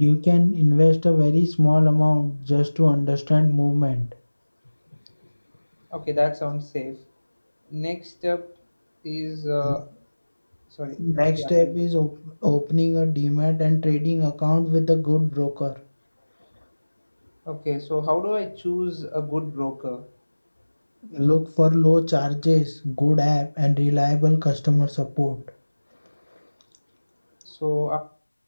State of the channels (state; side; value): inverted; both; correlation -1.00